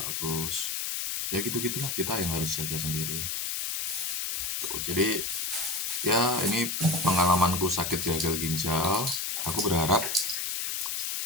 bagus. Ya gitu gitulah, kita yang harus jaga sendiri tuh. Jadi ya ini pengalamanku sakit gagal ginjal. Aku berharap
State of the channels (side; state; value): left; noise; hiss, 1 dB below the sound